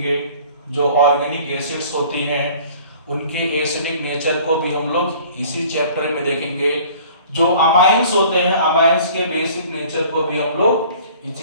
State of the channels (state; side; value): inverted; both; correlation -0.50